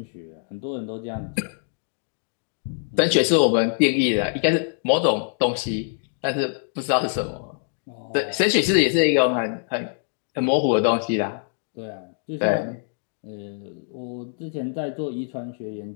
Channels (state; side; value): silent; right; digital silence